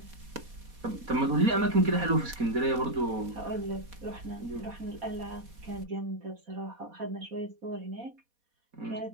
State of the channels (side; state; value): left; late; 4.1 ms